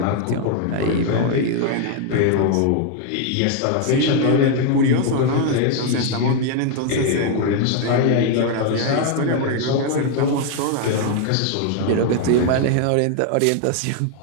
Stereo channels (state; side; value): different; both; correlation 0.01